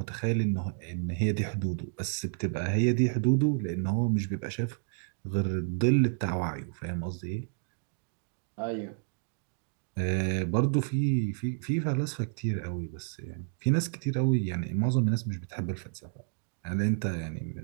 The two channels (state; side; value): silent; left; digital silence